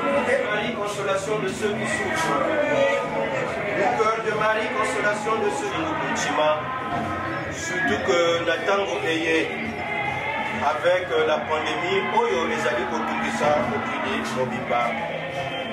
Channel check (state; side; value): identical; both; correlation 1.00